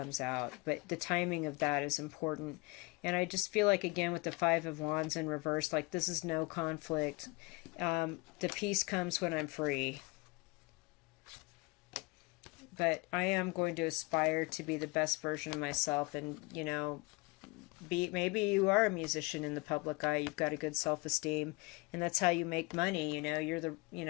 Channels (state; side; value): quieter; right; 26.5 dB